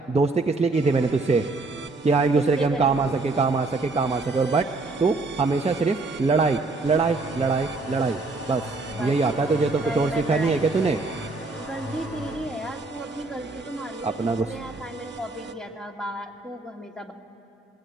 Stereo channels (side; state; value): left; quieter; 3.5 dB